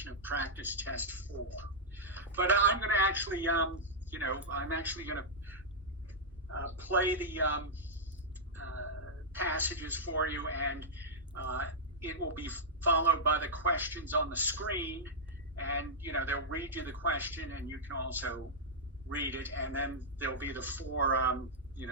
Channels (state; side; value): normal; both; correlation -0.08